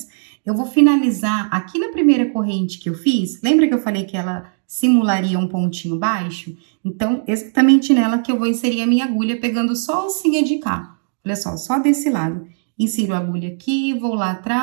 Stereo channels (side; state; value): left; silent; digital silence